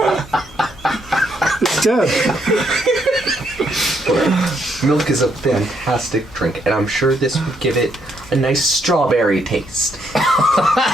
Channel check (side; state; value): both; normal; correlation 0.74